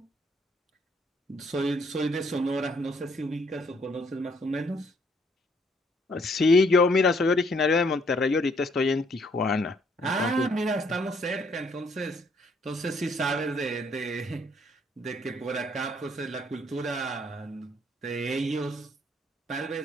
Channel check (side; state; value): both; normal; correlation 0.67